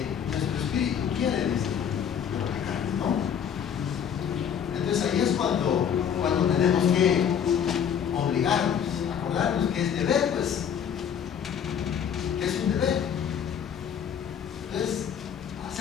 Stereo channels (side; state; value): right; quieter; 8.3 dB